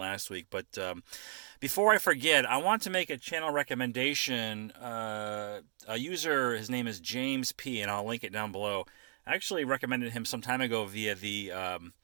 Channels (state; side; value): silent; left; digital silence